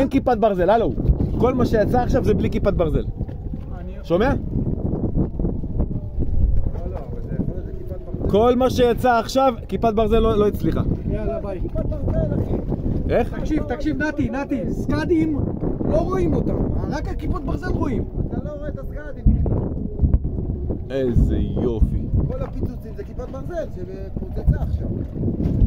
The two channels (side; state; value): both; identical; correlation 1.00